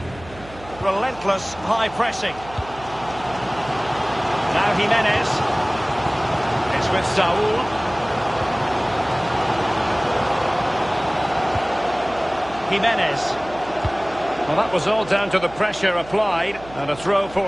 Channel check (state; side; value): noise; right; hum, 18 dB below the sound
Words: Relentless high pressing. Now Jimenez. It's with Saul. Jimenez. Well, that was all down to the pressure applied and a throw